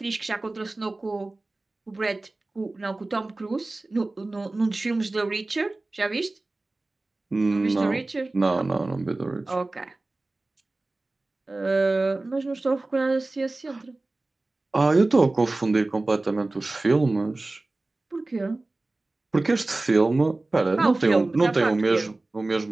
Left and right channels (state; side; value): quieter; left; 3.0 dB